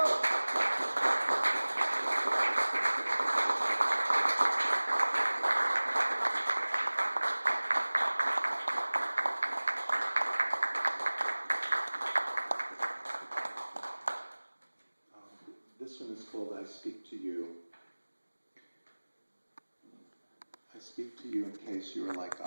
This one is called I Speak to You. I speak to you in case you are like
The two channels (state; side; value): inverted; both; correlation -1.00